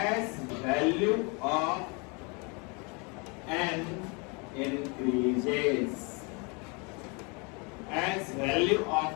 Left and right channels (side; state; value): right; quieter; 31.3 dB